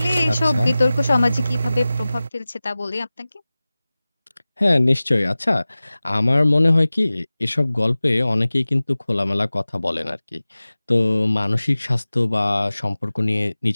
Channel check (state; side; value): inverted; both; correlation -0.97